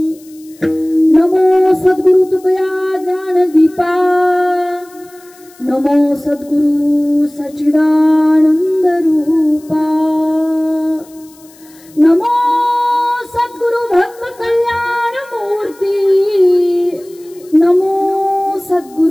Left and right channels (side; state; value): left; noise; hiss, 26 dB below the sound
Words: नमो सद्गुरु तुकया ज्ञान दीपा नमो सद्गुरु सच्चिदानंद रूपा नमो सद्गुरु भक्त कल्याण मूर्ती नमो